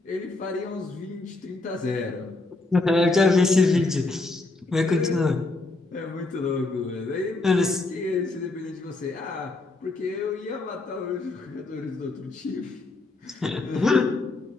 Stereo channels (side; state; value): right; quieter; 3.3 dB